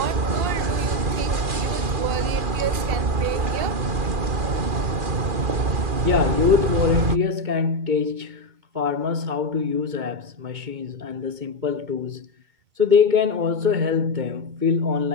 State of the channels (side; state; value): left; late; 2.4 ms